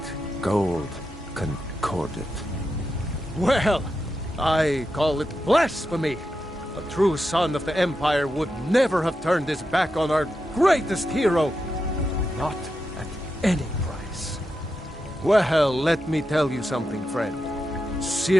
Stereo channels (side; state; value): both; normal; correlation 0.88